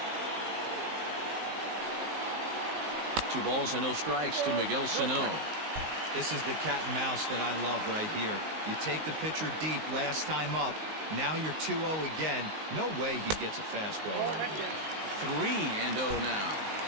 2 balls and no strikes to Miguel Sano. This is the cat and mouse that I love right here. You take the pitcher deep last time up. Now you're 2-0 again. No way he gets a fastball right here. 3-0 now.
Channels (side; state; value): left; late; 19 ms